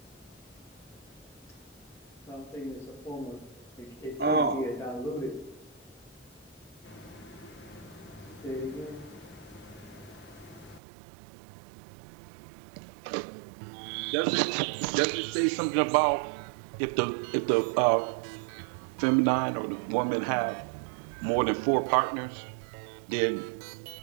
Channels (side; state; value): left; drops out; at 10.8 s